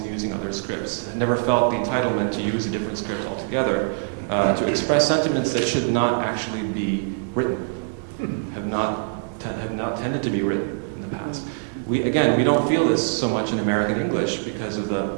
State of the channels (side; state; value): left; silent; digital silence